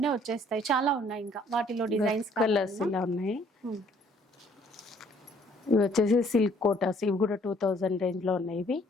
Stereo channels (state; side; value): normal; both; correlation 0.61